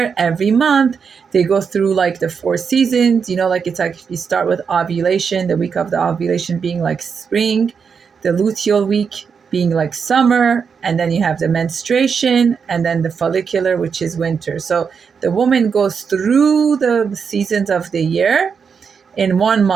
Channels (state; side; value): quieter; left; 6.2 dB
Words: every month they go through like the 4 seasons. Like it's like you start with ovulation, the week of the ovulation being like spring, the luteal week being like summer, and then you have the menstruation, and then the follicular, which is winter. So the woman goes through the seasons of the year in 1